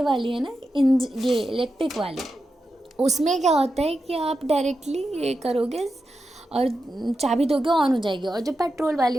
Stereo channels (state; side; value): normal; both; correlation 0.89